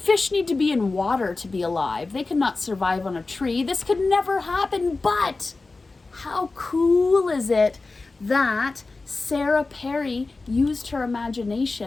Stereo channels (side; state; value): right; quieter; 3.6 dB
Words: need to be in water to be alive. They could not survive on a tree. This could never happen, but how cool is it that Sarah Perry used her